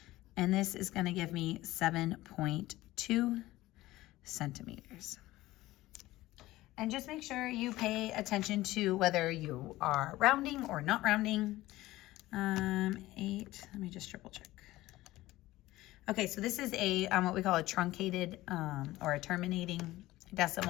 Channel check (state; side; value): quieter; right; 17.3 dB